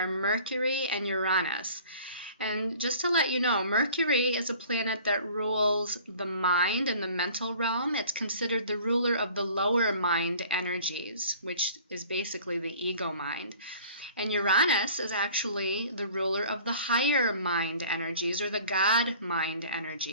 Mercury and Uranus. And just to let you know, Mercury is a planet that rules the mind and the mental realm. It's considered the ruler of the lower mind energies, which is basically the ego mind. And Uranus is actually the ruler of the higher mind energies, or the God mind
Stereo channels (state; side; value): inverted; both; correlation -0.49